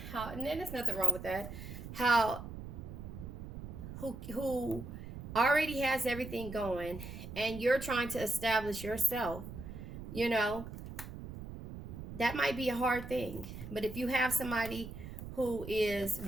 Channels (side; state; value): right; noise; rumble, 10 dB below the sound